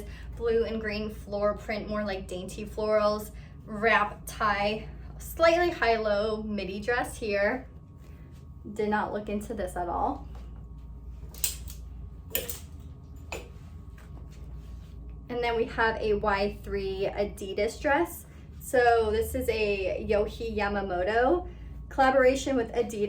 blue and green floral print, more like dainty florals, wrap tie, slightly high-low midi dress here. Did not look into this at all. And then we have a Y3 Adidas dress. So this is a Yohei Yamamoto collaboration with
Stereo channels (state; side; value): identical; both; correlation 1.00